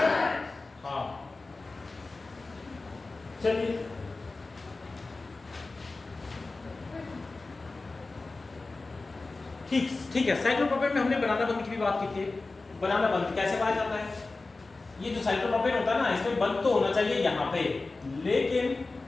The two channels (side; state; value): right; quieter; 3.5 dB